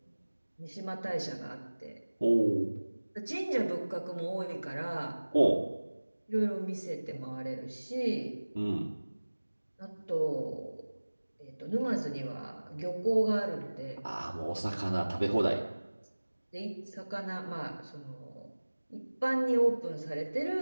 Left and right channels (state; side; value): inverted; both; correlation -1.00